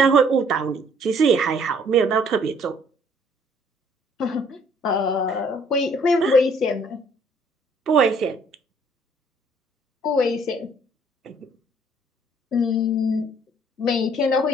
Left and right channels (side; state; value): both; normal; correlation 0.61